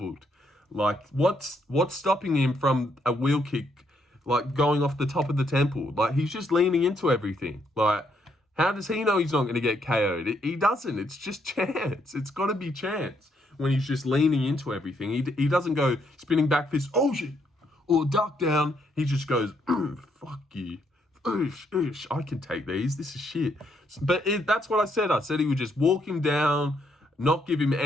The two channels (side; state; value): both; normal; correlation 0.73